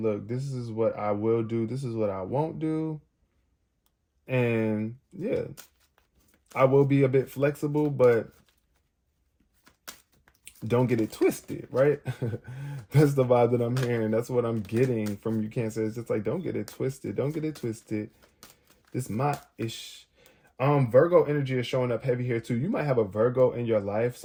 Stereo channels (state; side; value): identical; both; correlation 1.00